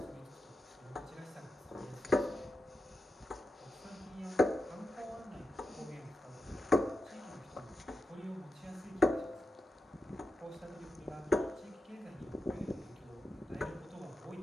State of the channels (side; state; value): both; normal; correlation 0.89